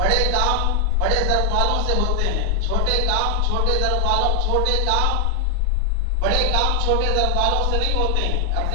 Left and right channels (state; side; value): different; both; correlation 0.00